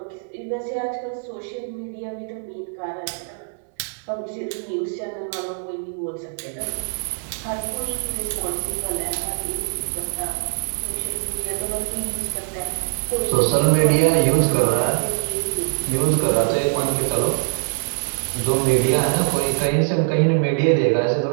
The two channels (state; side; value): silent; left; digital silence